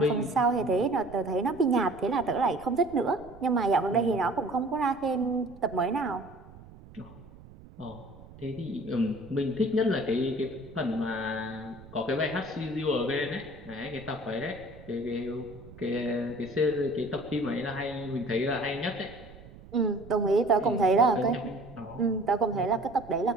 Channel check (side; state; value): right; noise; rumble, 19 dB below the sound